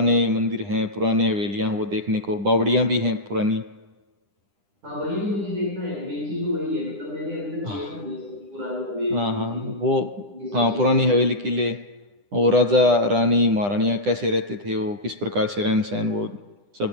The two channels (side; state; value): left; late; 10 ms